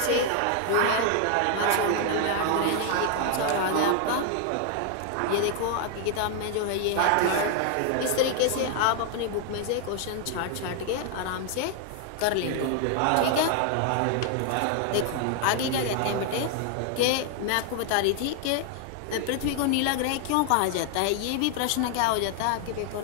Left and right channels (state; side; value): different; both; correlation 0.00